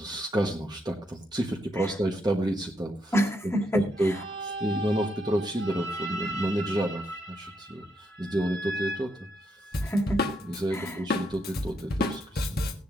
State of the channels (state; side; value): normal; both; correlation 0.78